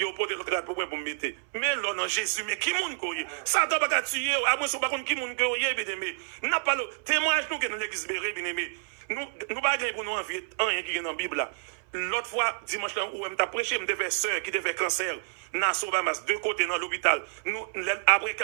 y a pas de rate pour me mettre. Mais là, non, Jésus, mais qui moun koye? Ça doit pas tuer, à moins pas qui moun koye, bien aimé. N'a pas le témoignage nous que dans l'église béré, bien aimé. Nous pas pour nous envier rien qui est dans la Bible là. L'autre fois, dimanche là, où je prêché, je devais sœur qui devait cancer, dans Sobamas, deux côtés dans l'hôpital. Après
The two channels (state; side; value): silent; left; 59 dB below the other